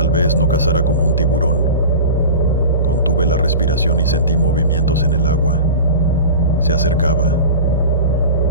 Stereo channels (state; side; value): inverted; both; correlation -0.32